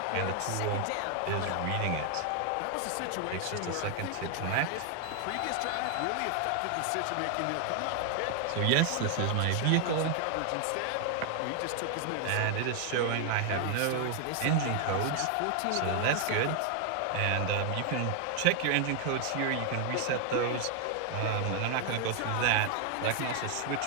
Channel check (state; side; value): different; both; correlation 0.00